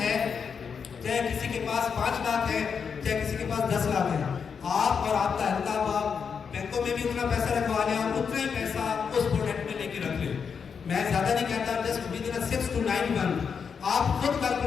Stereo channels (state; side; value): quieter; right; 6.3 dB